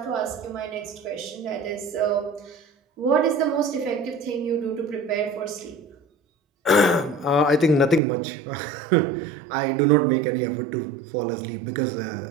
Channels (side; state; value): left; drops out; at 8.0 s